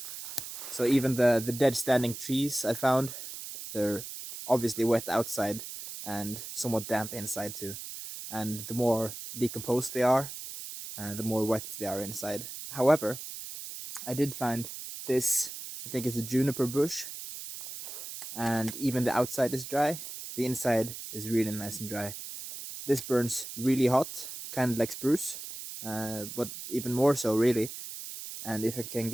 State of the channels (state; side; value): noise; right; hiss, 9 dB below the sound